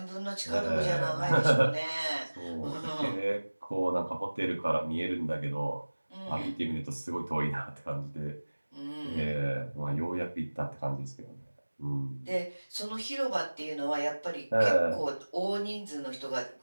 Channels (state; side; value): inverted; both; correlation -1.00